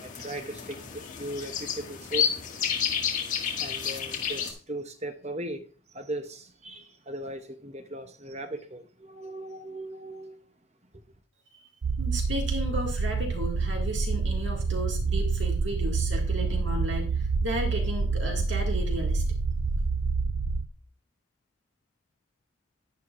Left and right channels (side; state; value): both; normal; correlation 0.57